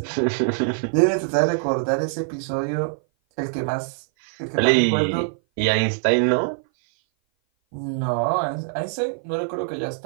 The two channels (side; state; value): left; silent; 57 dB below the other